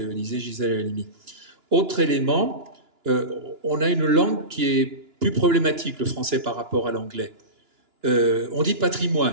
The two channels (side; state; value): left; late; 2.9 ms